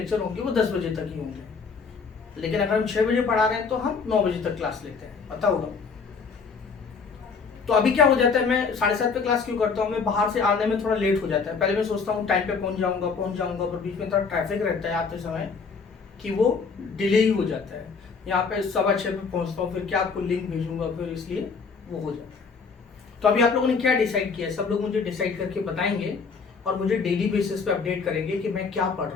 होंगे वो 10 बजे तक ही होंगे, लेकिन अगर हम 6 बजे पढ़ा रहे हैं तो हम 9 बजे तक क्लास लेते हैं, पता होगा। तो अभी क्या हो जाता है, मैं 7:30 पे क्लास क्यों करता हूँ, मैं बाहर से आने में थोड़ा लेट हो जाता है। पहले मैं सोचता हूँ टाइम पे पहुंच जाऊंगा, पर बीच में थोड़ा ट्रैफिक रहता है आते समय कि वो डिले ही हो जाता है। यहाँ पे 6:15 पे पहुंचता हूँ, फिर क्या आपको लिंक भेजूंगा, फिर इसलिए वो हो जाता है। तो अभी आप लोगों ने क्या डिसाइड किया, सब लोग मुझे डिसाइड करके बताएंगे और मुझे डेली बेसिस पे अपडेट करेंगे कि मैं क्या पढ़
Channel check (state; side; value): quieter; right; 5.2 dB